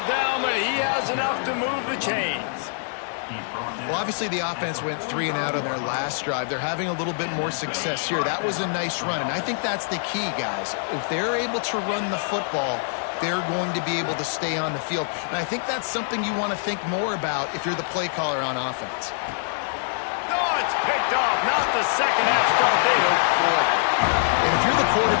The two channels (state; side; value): silent; right; 62 dB below the other